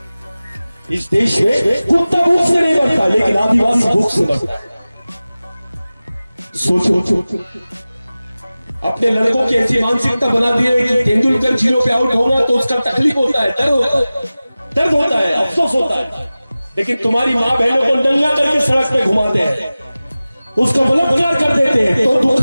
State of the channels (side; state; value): both; inverted; correlation -0.97